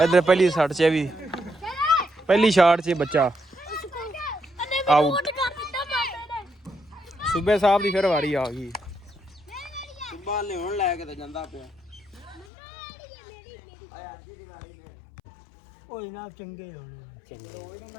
ਇੱਧਰ ਪਹਿਲੀ ਸੱਟ 'ਚ ਵੀ ਪਹਿਲੀ ਸ਼ਾਟ 'ਚ ਬੱਚਾ ਆਊਟ। ਸੂਬੇ ਸਾਹਿਬ ਦੀ ਫਿਰ ਵਾਰੀ ਆ ਗਈ। ਸੁਬਾ ਲਿਆਉਣ ਲੈ ਕੇ ਤੇ ਜਾਂਦਾ ਪਿਆ ਕੋਈ ਨਾ ਚੰਗੇ ਹੋਣੇ ਚੰਗੇ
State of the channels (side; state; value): right; drops out; at 12.5 s